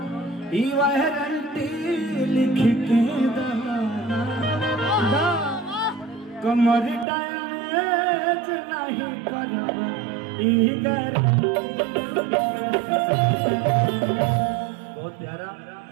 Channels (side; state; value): left; drops out; at 7.1 s